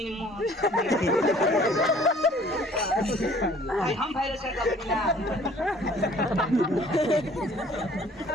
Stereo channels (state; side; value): normal; both; correlation 0.54